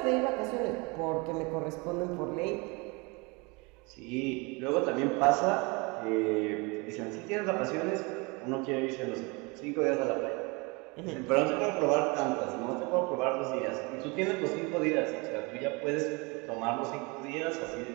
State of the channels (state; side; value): quieter; left; 28.0 dB